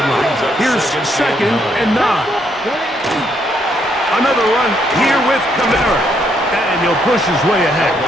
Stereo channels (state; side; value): normal; both; correlation 0.73